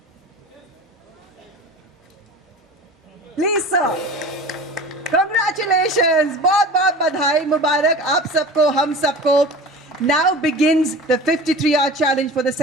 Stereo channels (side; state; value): both; normal; correlation 0.36